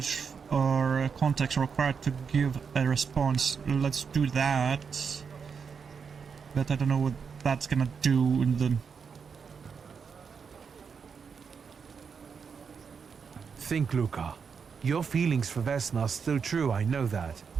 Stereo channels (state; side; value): quieter; left; 6.1 dB